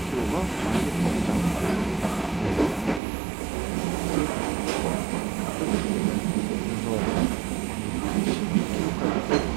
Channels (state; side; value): drops out; left; at 3.0 s